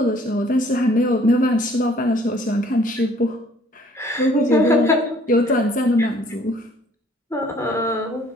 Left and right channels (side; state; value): both; normal; correlation 0.58